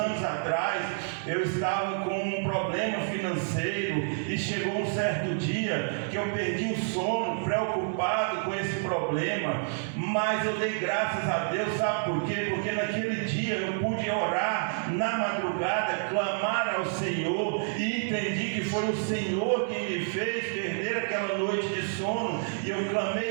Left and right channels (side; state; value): left; silent; 59 dB below the other